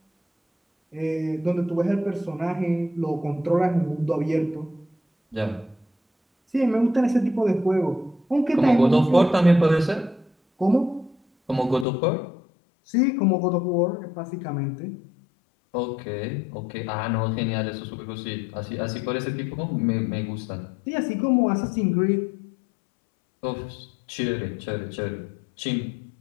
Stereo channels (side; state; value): right; drops out; at 11.9 s